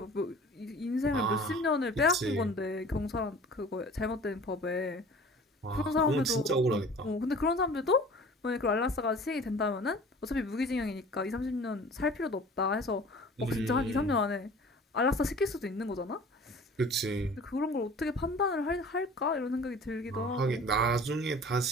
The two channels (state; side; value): normal; both; correlation 0.45